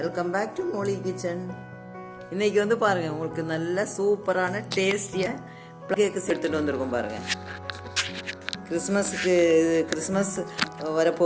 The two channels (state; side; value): identical; both; correlation 1.00